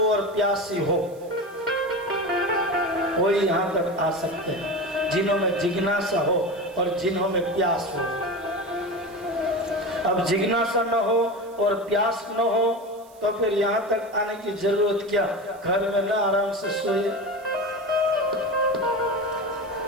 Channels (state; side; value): noise; right; hiss, 27 dB below the sound